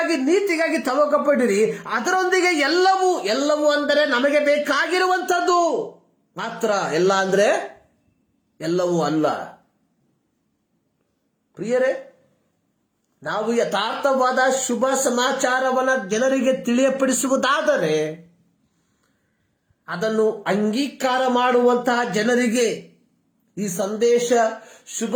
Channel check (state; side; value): identical; both; correlation 1.00